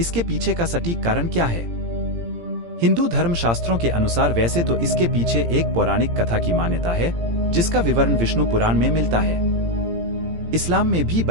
पीछे का सटीक कारण क्या है? हिंदू धर्मशास्त्रों के अनुसार वैसे तो इसके पीछे एक पौराणिक कथा की मान्यता है जिसका विवरण विष्णु पुराण में मिलता है। इस्लाम में भी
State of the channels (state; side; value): late; left; 17 ms